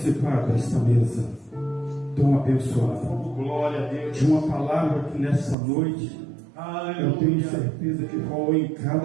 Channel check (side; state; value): left; drops out; at 5.6 s